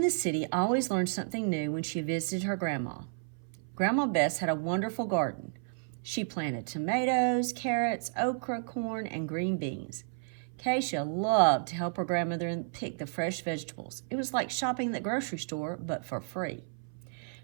city, always learned something new when she visited her grandma. Grandma Bess had a wonderful garden. She planted tomatoes, carrots, okra, corn, and green beans. Keisha loved to help her grandmother pick the fresh vegetables. It was like shopping at the grocery store, but for free.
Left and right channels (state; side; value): silent; left; 56 dB below the other